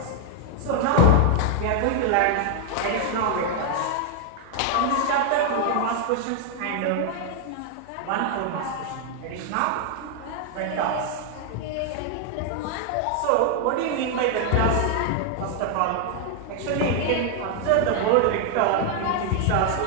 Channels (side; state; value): both; different; correlation 0.00